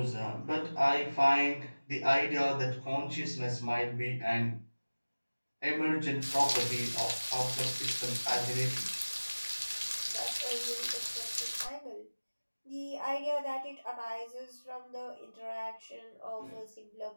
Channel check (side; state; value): both; inverted; correlation -1.00